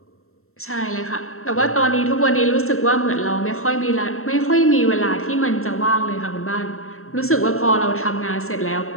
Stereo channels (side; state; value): right; late; 0.62 ms